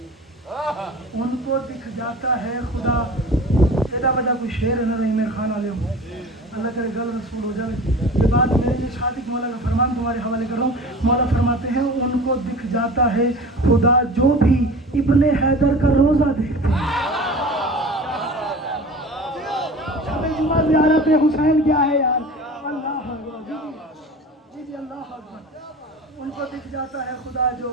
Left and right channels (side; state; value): both; normal; correlation 0.38